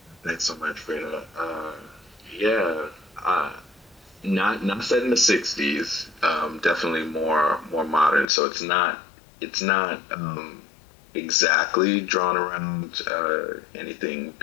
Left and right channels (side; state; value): right; drops out; at 8.2 s